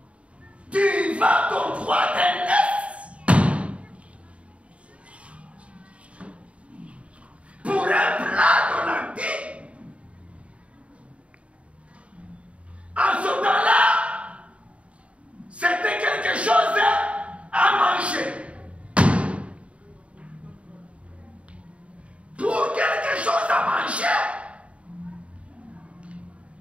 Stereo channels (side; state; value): left; late; 0.063 ms